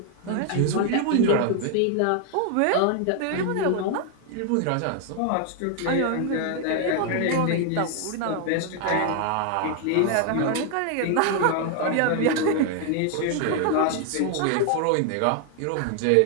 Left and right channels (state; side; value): different; both; correlation 0.00